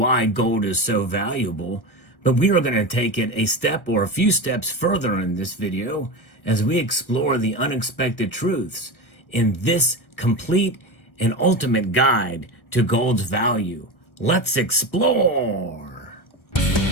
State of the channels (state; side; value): late; right; 1.1 ms